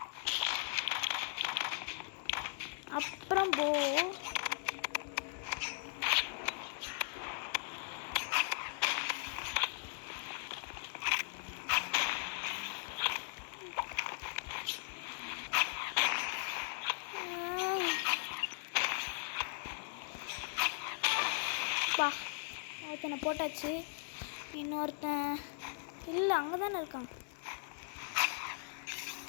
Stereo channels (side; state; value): right; silent; digital silence